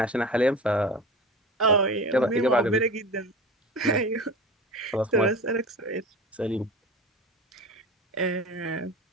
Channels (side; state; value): both; normal; correlation 0.33